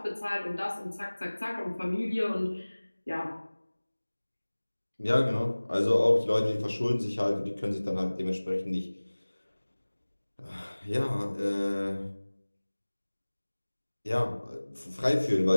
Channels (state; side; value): inverted; both; correlation -1.00